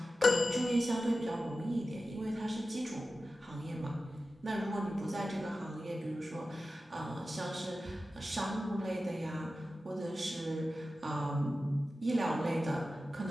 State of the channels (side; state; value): both; normal; correlation 0.94